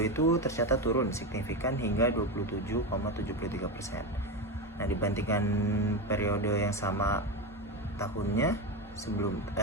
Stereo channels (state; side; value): normal; both; correlation 0.16